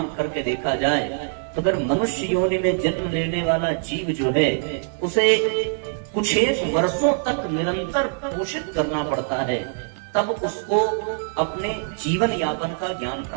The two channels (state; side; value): silent; left; digital silence